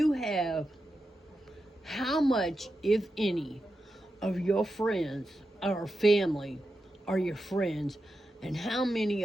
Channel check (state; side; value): normal; both; correlation 0.89